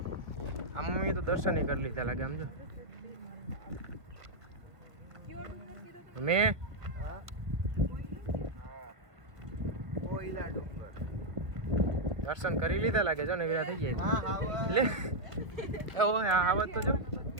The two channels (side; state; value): left; late; 1.7 ms